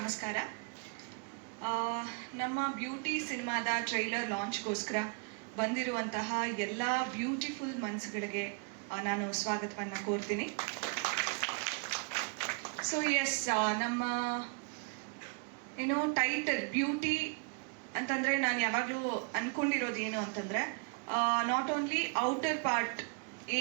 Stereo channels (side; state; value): left; quieter; 37.8 dB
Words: ನಮ್ಮ ಬ್ಯೂಟಿ ಸಿನಿಮಾದ ಟ್ರೈಲರ್ ಲಾಂಚ್ಗೋಸ್ಕರ ಬಂದಿರುವಂತಹ ಎಲ್ಲ ಬ್ಯೂಟಿಫುಲ್ ಮನ್ಸುಗಳಿಗೆ ನಾನು ಸ್ವಾಗತವನ್ನು ಕೋರ್ತೀನಿ. ಸೊ ಎಸ್, ನಮ್ಮ ಏನೋ ಟೈಟಲ್ ಬ್ಯೂಟಿ ಅಂತಂದರೆ ನಾನು ಯಾವಾಗಲೂ ಅಂದ್ಕೊಂಡಿರೋದು ಏನು ಅಂತಂದರೆ, ನಾಟ್ ಓನ್ಲಿ ಔಟರ್ ಪಾರ್ಟ್